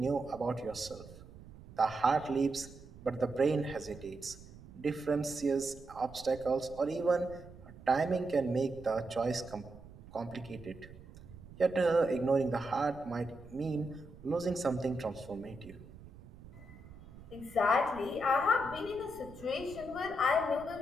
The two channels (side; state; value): right; noise; rumble, 18 dB below the sound